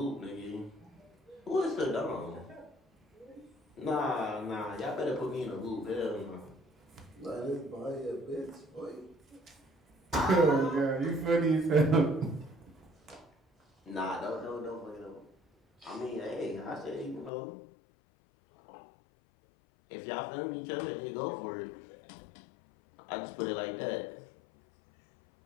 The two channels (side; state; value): right; drops out; at 17.3 s